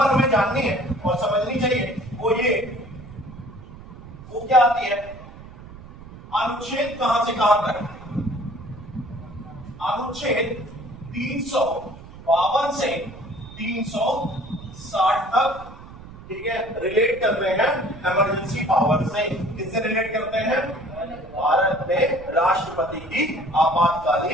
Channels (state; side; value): noise; right; rumble, 16 dB below the sound